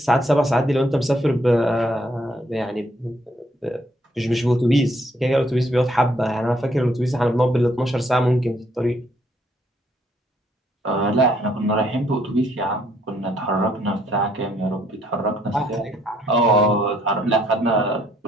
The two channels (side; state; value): both; normal; correlation 0.68